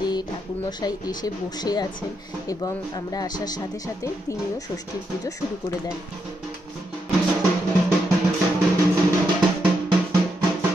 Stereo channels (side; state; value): both; normal; correlation 0.81